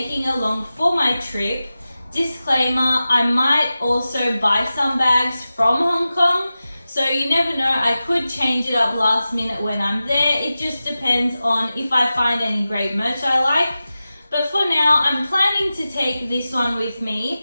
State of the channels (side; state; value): both; inverted; correlation -0.94